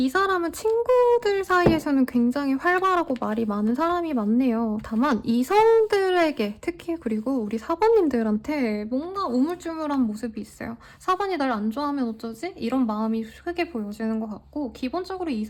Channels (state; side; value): identical; both; correlation 1.00